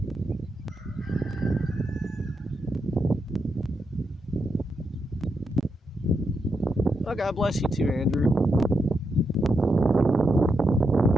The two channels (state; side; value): normal; both; correlation 0.83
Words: Oh, God bless you too, Andrew.